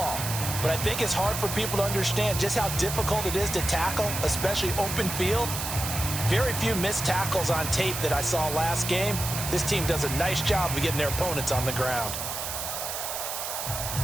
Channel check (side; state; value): right; noise; hiss, 4 dB below the sound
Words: But I think it's hard for people to understand just how difficult it is to tackle, especially open field. Very few missed tackles on tape that I saw last game. This team does a nice job of getting their opponents on the ground.